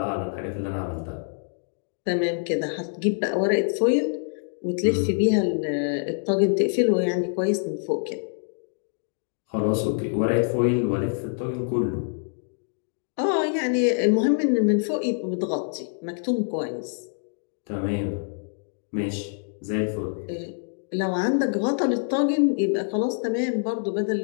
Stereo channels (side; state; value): right; silent; digital silence